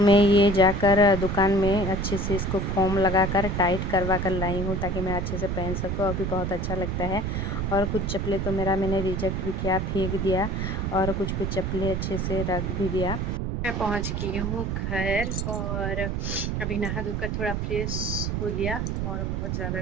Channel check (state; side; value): noise; right; rumble, 1 dB below the sound